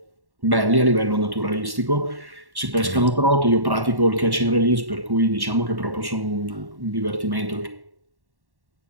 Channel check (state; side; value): late; left; 1.1 ms